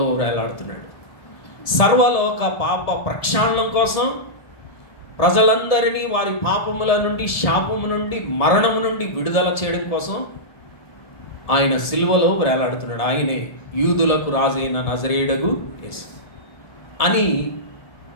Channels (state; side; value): late; right; 1.7 ms